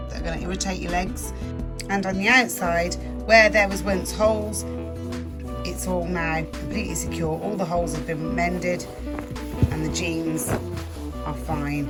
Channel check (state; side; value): identical; both; correlation 1.00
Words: that are going to irritate your legs. And on the outside, where there was once holes, it's all now completely secure. All the holes have been mended, and the jeans are fine